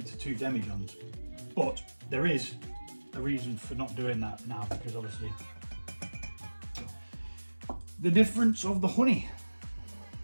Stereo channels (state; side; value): inverted; both; correlation -1.00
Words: 2 demijohns. But there is a reason for not doing that now, because obviously the difference of the honey.